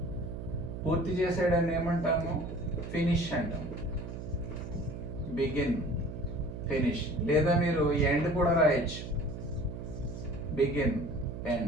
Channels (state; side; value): noise; right; hum, 8 dB below the sound